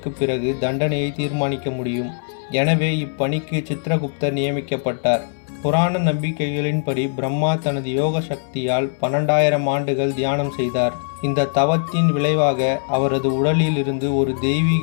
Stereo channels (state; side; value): silent; right; digital silence